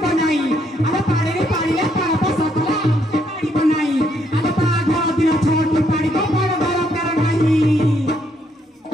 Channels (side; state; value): both; normal; correlation 0.73